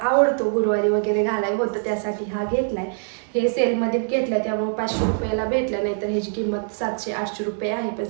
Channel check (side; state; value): left; silent; 60 dB below the other